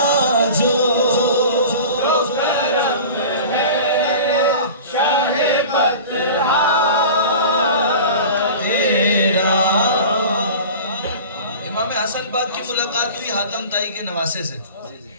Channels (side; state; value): both; inverted; correlation -0.37